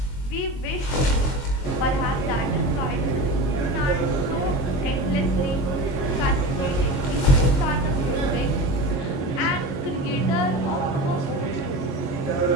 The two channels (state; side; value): late; right; 22 ms